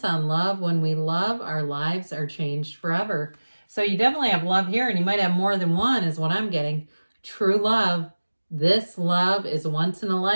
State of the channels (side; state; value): both; inverted; correlation -1.00